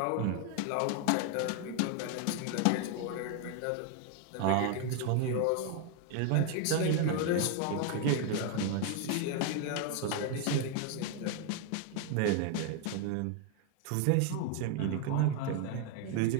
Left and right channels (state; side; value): different; both; correlation 0.01